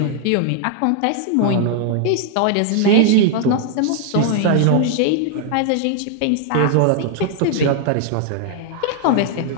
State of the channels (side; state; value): both; different; correlation 0.00